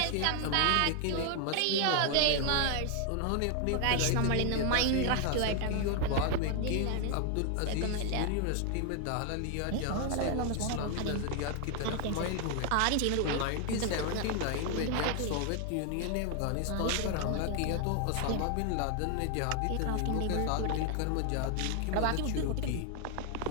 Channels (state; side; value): different; both; correlation 0.00